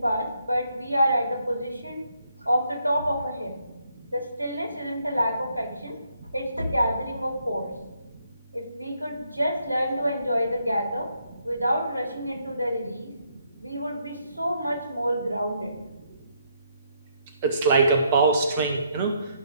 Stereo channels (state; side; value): inverted; both; correlation -0.74